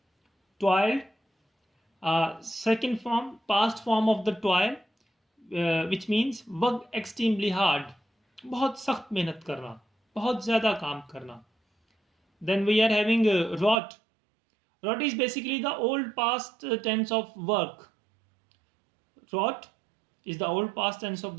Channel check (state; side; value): drops out; left; at 13.8 s